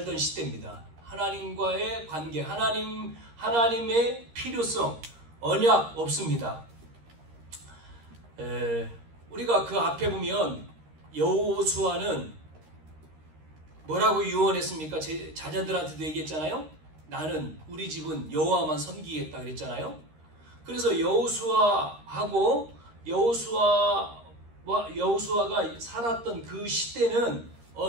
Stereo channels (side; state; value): left; late; 13 ms